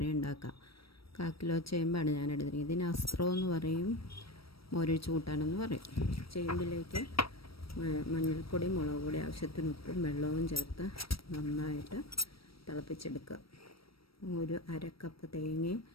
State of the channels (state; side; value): late; right; 0.75 ms